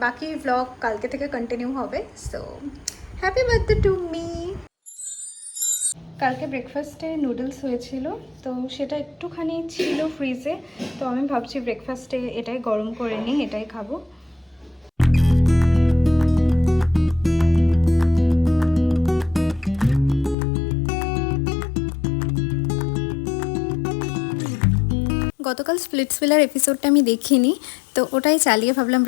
বাকি ভ্লগ কালকে থেকে কন্টিনিউ হবে। So happy birthday to me. কালকে ব্রেকফাস্টে নুডলস হয়েছিল, তো সেটা একটুখানি ছিল ফ্রিজে, তো আমি ভাবছি ব্রেকফাস্টে এটাই গরম করে নিই, এটাই খাবো। গতকাল স্প্লিটসভিলার এপিসোডটা আমি দেখিনি, তো ওটাই চালিয়ে ভাবলাম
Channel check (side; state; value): right; drops out; at 20.4 s